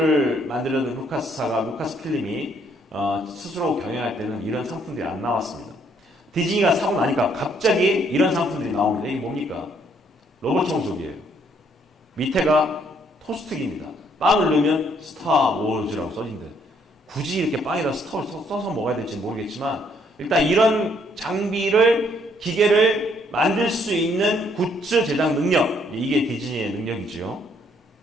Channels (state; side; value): normal; both; correlation 0.68